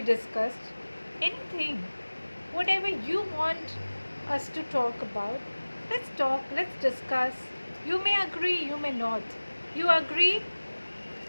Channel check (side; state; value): both; inverted; correlation -1.00